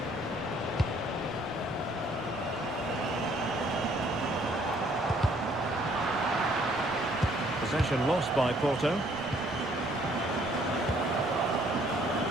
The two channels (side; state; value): right; noise; rumble, 22 dB below the sound